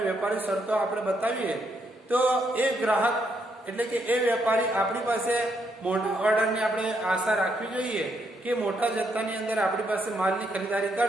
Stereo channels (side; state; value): both; normal; correlation 0.76